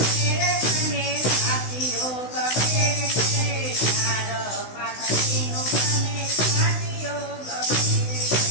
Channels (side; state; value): right; late; 16 ms